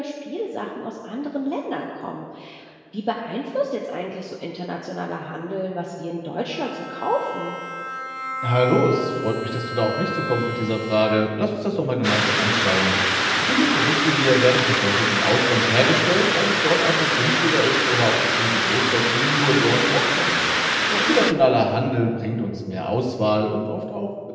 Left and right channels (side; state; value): both; identical; correlation 1.00